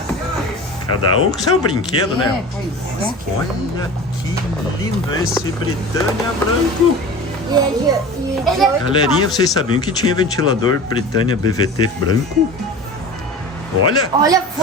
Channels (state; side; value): normal; both; correlation 0.36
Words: Cada um com seu brinquedo, né? Pois é. Olha que lindo esse Britânia branco. Galerinha, vocês sabiam que tinha ventilador Britânia BVT branco? Olha, Olha,